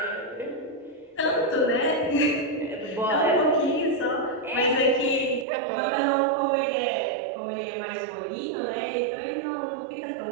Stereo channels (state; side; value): drops out; left; at 5.5 s